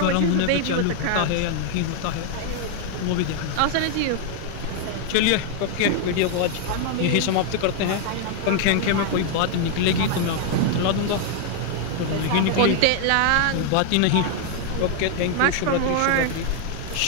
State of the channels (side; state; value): both; different; correlation 0.00